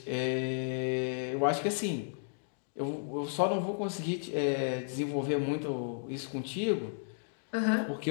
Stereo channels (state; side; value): silent; right; digital silence